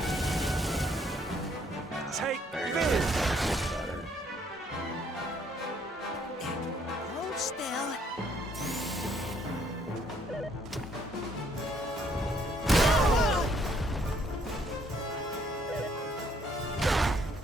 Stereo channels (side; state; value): both; normal; correlation 0.66